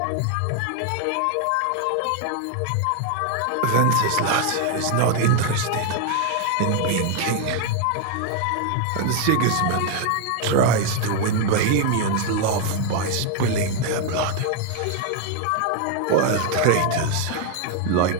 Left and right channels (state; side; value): different; both; correlation 0.00